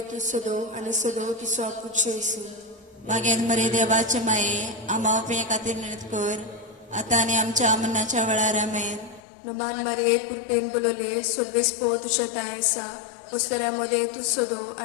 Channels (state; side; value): drops out; right; at 9.2 s